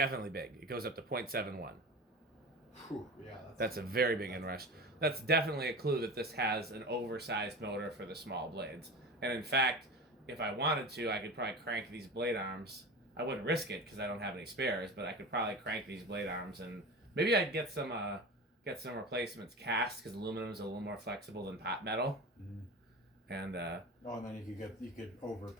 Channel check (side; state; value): both; normal; correlation 0.30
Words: big. It goes up to 0.71. Whew, yeah, that's a very big inrush. That's definitely a clue that this has an oversized motor for the small blades. And in fact, if I wanted to, I could probably crank these blade arms. I wouldn't risk it because I don't have any spares, but I could probably crank these blade arms, and maybe I'd get some replacements cast because aluminum is a little more flexible than pot metal. Mm-hmm. And and then you could over